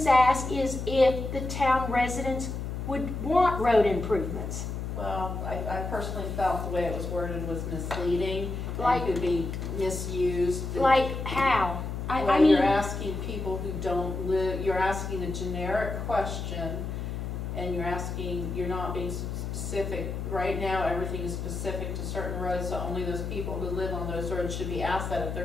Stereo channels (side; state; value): left; noise; hum, 5 dB below the sound